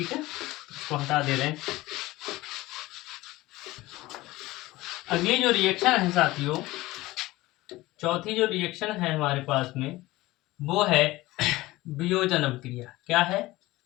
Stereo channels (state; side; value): quieter; right; 18.7 dB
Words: है। इसको हटा दे रहे हैं। अगली जो रिएक्शन है साथियों, चौथी जो रिएक्शन है हमारे पास में वो है वियोजन अभिक्रिया। क्या है,